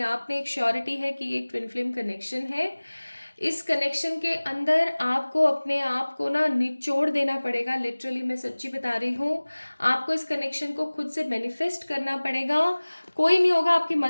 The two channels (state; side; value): inverted; both; correlation -1.00